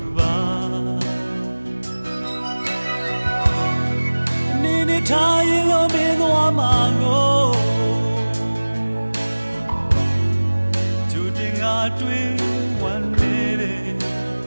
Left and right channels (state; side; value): inverted; both; correlation -1.00